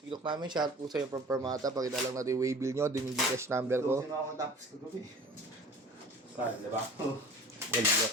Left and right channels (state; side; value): normal; both; correlation 0.43